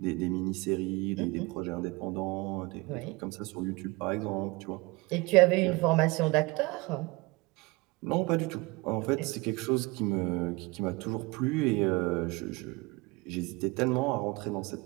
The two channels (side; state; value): left; quieter; 24.0 dB